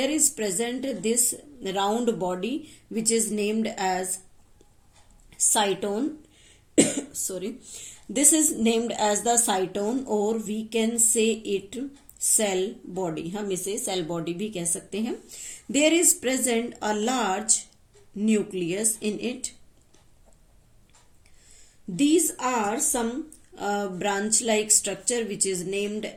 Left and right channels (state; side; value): identical; both; correlation 1.00